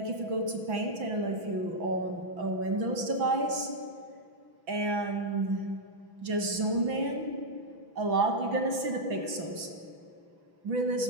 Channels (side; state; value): left; late; 6.0 ms